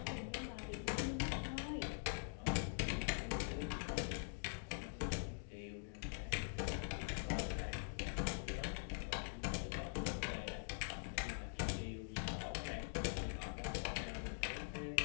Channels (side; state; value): right; silent; digital silence